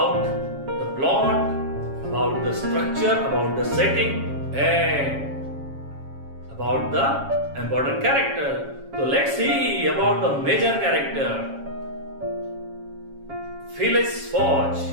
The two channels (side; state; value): left; late; 7.3 ms